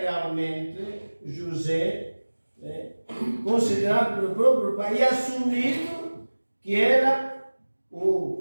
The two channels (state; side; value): inverted; both; correlation -1.00